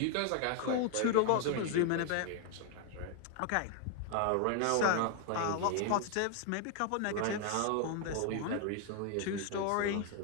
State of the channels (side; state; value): both; different; correlation 0.00